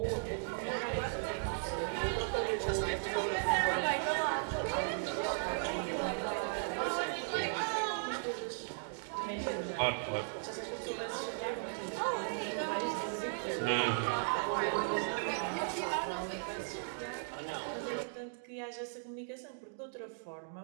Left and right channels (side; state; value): left; silent; digital silence